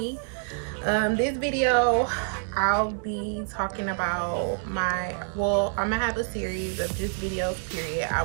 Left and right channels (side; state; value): left; silent; 60 dB below the other